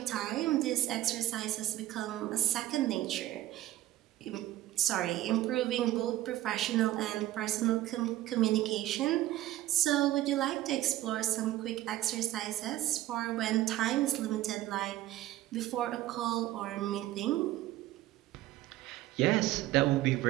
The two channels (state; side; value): quieter; left; 14.8 dB